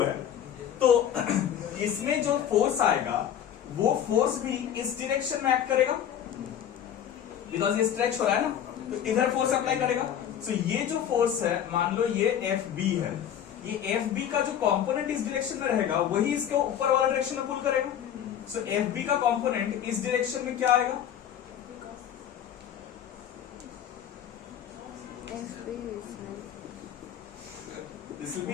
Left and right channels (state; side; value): quieter; right; 9.7 dB